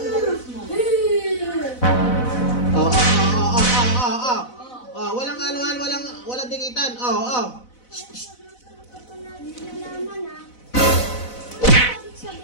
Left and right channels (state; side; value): late; right; 4.0 ms